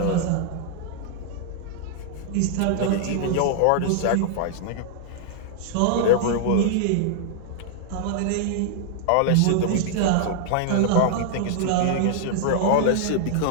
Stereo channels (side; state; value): both; different; correlation -0.01